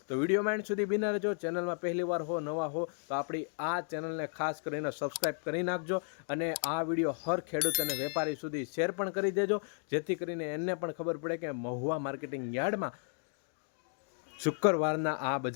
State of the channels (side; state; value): right; silent; 55 dB below the other